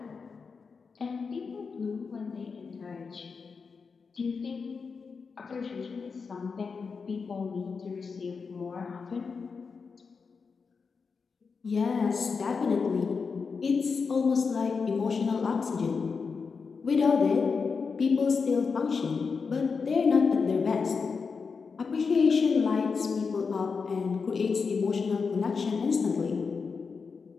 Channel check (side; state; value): right; quieter; 5.2 dB